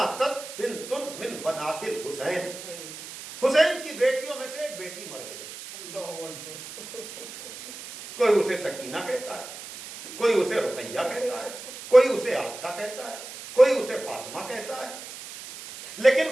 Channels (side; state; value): right; noise; hiss, 12 dB below the sound